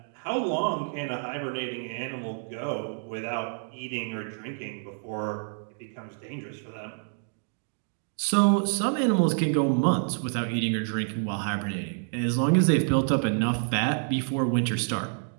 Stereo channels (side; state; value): left; silent; 59 dB below the other